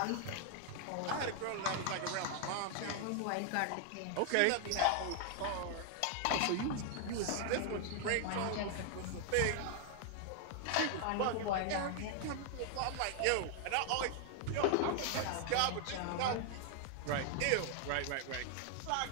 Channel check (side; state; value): both; different; correlation 0.00